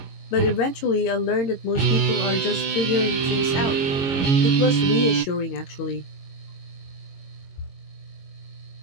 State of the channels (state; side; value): late; right; 22 ms